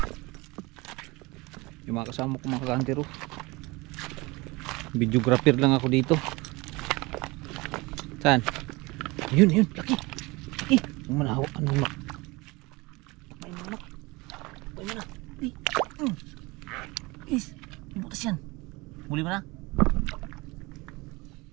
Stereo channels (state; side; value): quieter; left; 23.9 dB